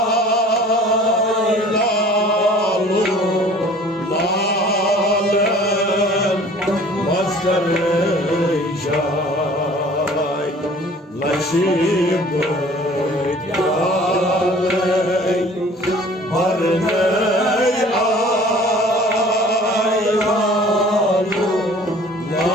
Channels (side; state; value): both; normal; correlation 0.49